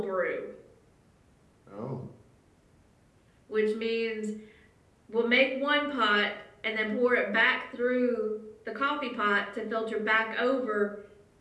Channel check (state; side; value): identical; both; correlation 1.00